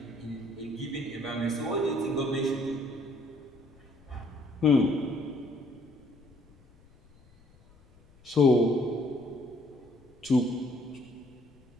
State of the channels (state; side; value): noise; left; rumble, 28 dB below the sound